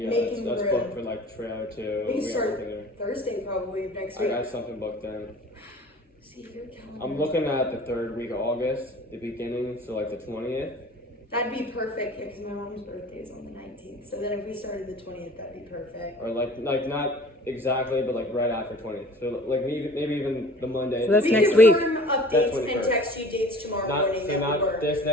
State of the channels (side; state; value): both; normal; correlation 0.46